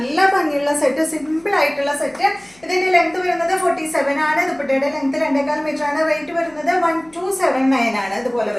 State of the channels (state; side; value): noise; left; hum, 29 dB below the sound